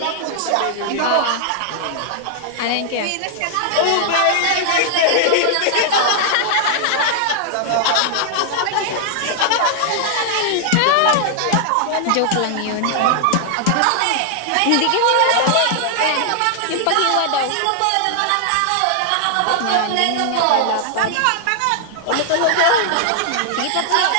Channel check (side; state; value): both; different; correlation 0.00